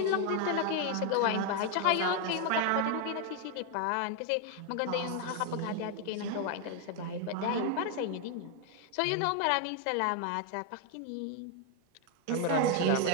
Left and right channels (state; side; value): different; both; correlation 0.01